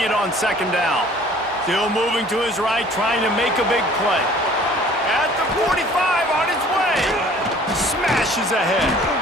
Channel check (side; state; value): both; normal; correlation 0.52